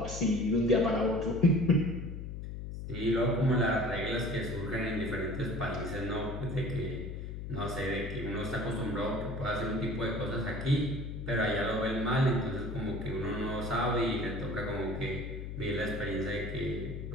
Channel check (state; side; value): noise; left; hum, 7 dB below the sound